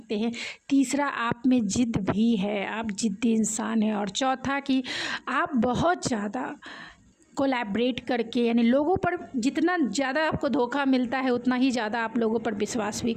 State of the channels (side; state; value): both; identical; correlation 1.00